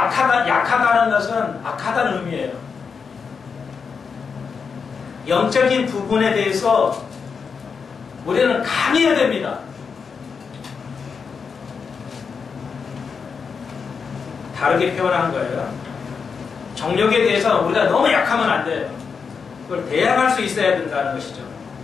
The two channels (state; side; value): quieter; right; 5.7 dB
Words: 것은 악하다는 의미예요. 영적인 부분에 대해서 우리는 강해야 됩니다. 다르게 표현한 거예요. 정욕에 대해서 우리가 너무 약하면 안 돼요. 그걸 대항할 수 있어야 된다는 것이죠.